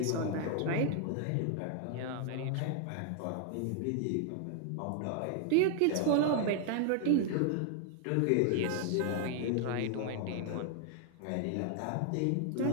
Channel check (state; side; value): different; both; correlation 0.00